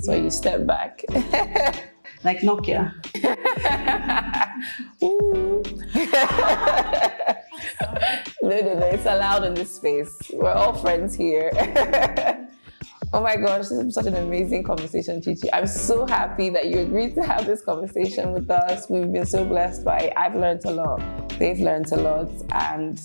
so you step back. like Nokia. Ooh. No, it's allowed in this space. We're all friends here. Oh my gosh, this is such an amazing conversation, Chichi. I'm so happy that you agreed to have this conversation with us. We've been so blessed by it. I've learned a lot. They've learned a lot. And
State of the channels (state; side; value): inverted; both; correlation -1.00